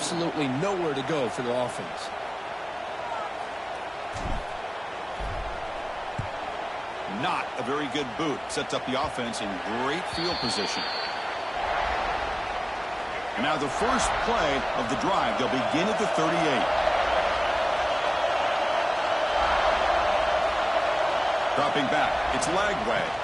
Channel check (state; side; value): identical; both; correlation 1.00